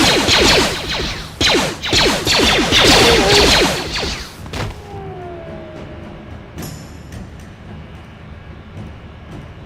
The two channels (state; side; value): identical; both; correlation 1.00